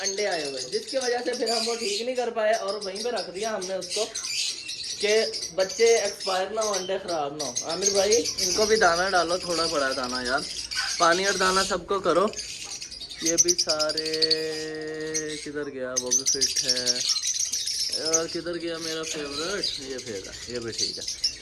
आए हुए, जिसकी वजह से फिर हम वो ठीक नहीं कर पाए और वहीं पे रख दिया हमने उसको, कि बच्चे एक्सपायर ना हो, अंडे ख़राब ना हो। आमिर भाई इनको भी दाना डालो, थोड़ा बड़ा दाना यार, पानी और दाना सबको करो। ये भी सारे किधर गया, वो भी फिट है यार, किधर गया मेरा फेवरेट, ये फेगा, ये भी ठीक है।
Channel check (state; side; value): identical; both; correlation 1.00